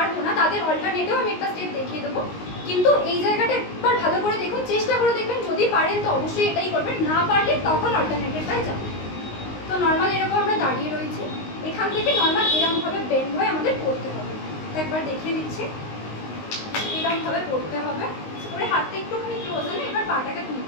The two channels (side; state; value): right; late; 19 ms